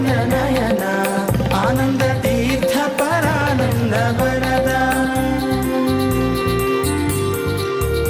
ನಯನ ಆನಂದ ತೀರ್ಥ ಪರಾನಂದ ವರದ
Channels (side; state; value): both; identical; correlation 1.00